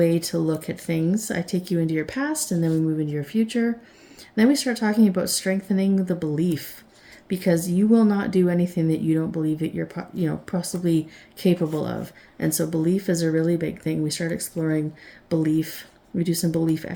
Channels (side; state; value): both; identical; correlation 1.00